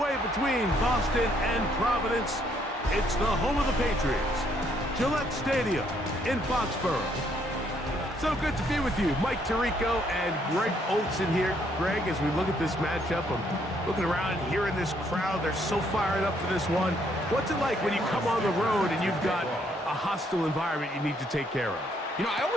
between Boston and Providence, it's the home of the Patriots, Gillette Stadium in Foxborough. So good to be with you. Mike Tirico and Greg Olson here. Greg, as we look at this matchup, I'm looking around here in this crowd. They're so fired up for this one. What's it like when you come on the road and you've got a hostile environment you need to take care of? You know, I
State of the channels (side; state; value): both; normal; correlation 0.70